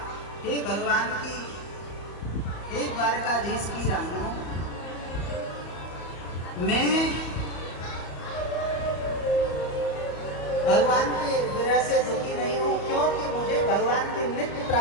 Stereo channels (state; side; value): late; right; 34 ms